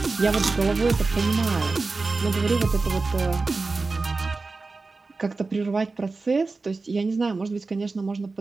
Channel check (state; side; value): quieter; left; 3.8 dB